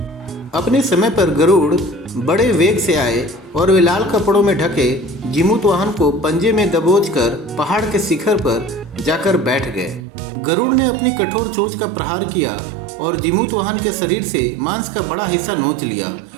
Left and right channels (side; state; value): left; drops out; at 10.1 s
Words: अपने समय पर गरुड़ बड़े वेग से आए और वे लाल कपड़ों में ढके जिमूतवाहन को पंजे में दबोचकर पहाड़ के शिखर पर जाकर बैठ गए। गरुड़ ने अपनी कठोर चोंच का प्रहार किया और जिमूतवाहन के शरीर से मांस का बड़ा हिस्सा नोच लिया।